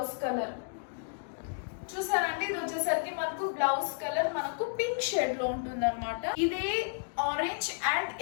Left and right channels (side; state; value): right; silent; digital silence